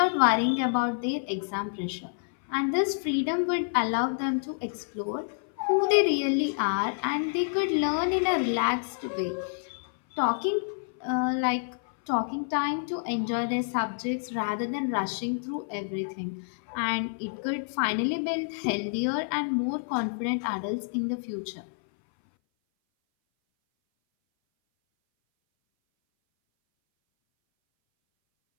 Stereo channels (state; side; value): silent; right; 58 dB below the other